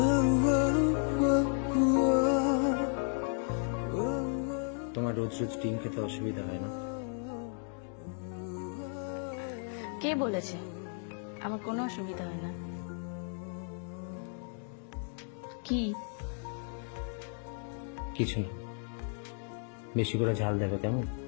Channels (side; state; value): right; silent; 55 dB below the other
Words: তোমার রোজ রোজ ডিম খেতে অসুবিধা হয় না? কে বলেছে আমার কোনো অসুবিধা হয় না? কি? কিছু না, বেশি করে ঝাল দেবে কেমন?